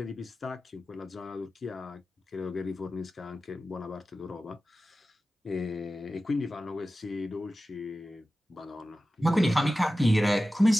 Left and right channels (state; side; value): normal; both; correlation 0.94